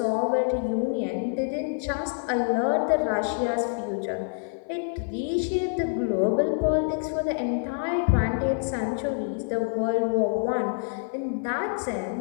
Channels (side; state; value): right; silent; 56 dB below the other